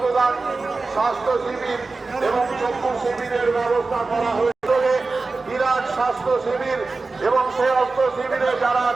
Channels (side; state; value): left; quieter; 3.8 dB